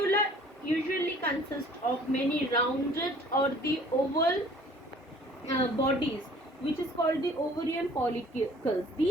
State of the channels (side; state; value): both; normal; correlation 0.52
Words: usually consists of many rounded or the oval bodies, which is called the ovarian follicles.